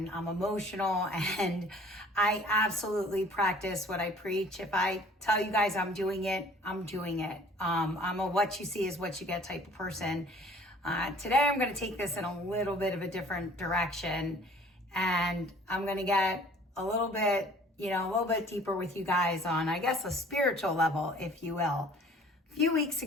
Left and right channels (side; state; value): both; normal; correlation 0.52